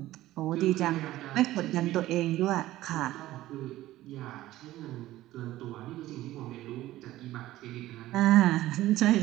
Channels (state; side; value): quieter; left; 15.6 dB